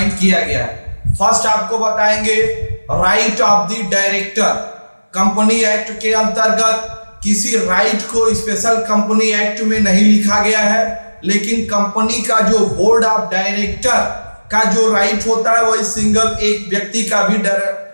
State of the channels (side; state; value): both; inverted; correlation -1.00